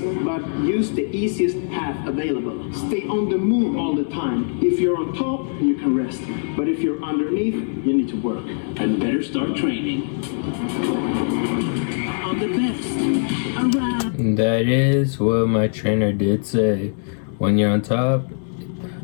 use the easiest path available. Stay on the move all the time. If you're on top, you can rest. But if you're underneath, you need to work. And better start training. I'm the best around. That is what my trainer did say. When you're on top,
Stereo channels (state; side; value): silent; right; 64 dB below the other